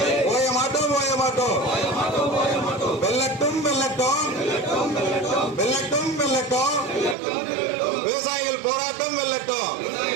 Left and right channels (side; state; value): left; drops out; at 7.2 s